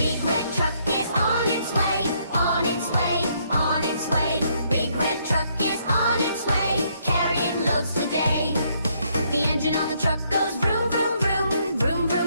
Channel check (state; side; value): inverted; both; correlation -0.71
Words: red truck is on its way, on its way, on its way. Big red truck is on its way, carrying loads today. The engine on the truck goes vroom, vroom, vroom, vroom,